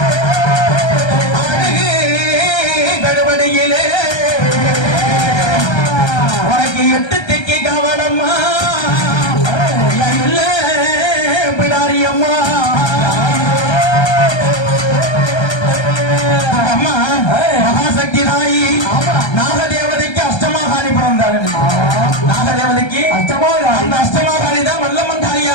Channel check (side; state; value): right; late; 1.3 ms